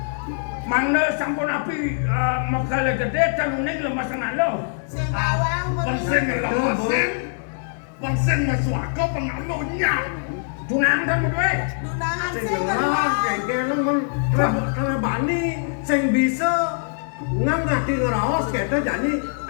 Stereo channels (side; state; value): right; silent; digital silence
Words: Mangga sampun api makala gede tanuning lemas ngalo. Sing bawang Bangsen ngelawasin. Bangsen maswaka pengalunya. Tunang kan kowe. Dunangan sing sing ngerang kengken men kalau bani sing bisa ngangati ngeraos kita jadi